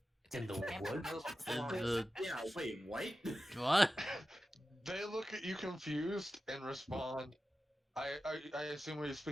It's in the woods. Yeah, wait, what? What? They look at you confused and respond. I assume we're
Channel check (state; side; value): normal; both; correlation 0.93